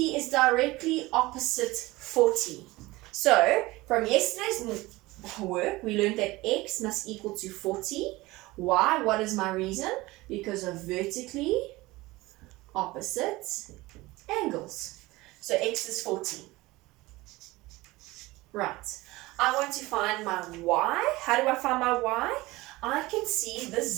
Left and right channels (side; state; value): left; quieter; 20.3 dB